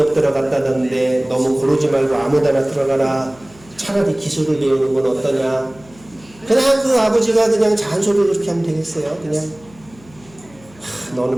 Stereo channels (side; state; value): left; noise; hum, 25 dB below the sound